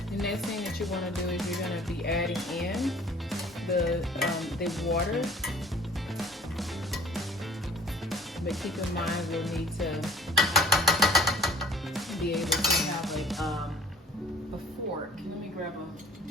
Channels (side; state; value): both; normal; correlation 0.52